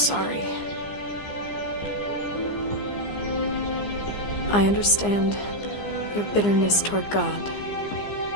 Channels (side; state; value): right; late; 15 ms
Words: I understand your bitterness toward God.